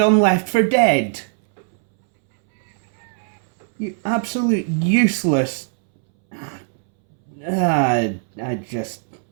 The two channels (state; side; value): silent; left; 66 dB below the other